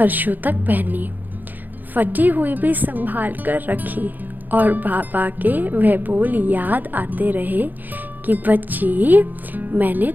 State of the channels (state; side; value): late; left; 0.086 ms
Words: तक पहनी, फटी हुई भी संभाल कर रखी और बाबा के वह बोल याद आते रहे कि बच्ची, मैंने